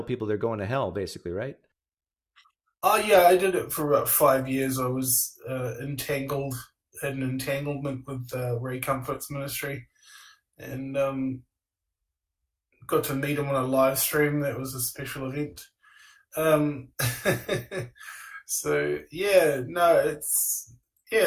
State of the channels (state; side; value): identical; both; correlation 1.00